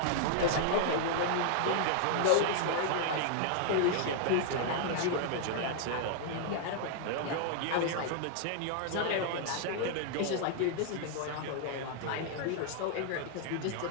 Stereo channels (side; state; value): both; different; correlation -0.01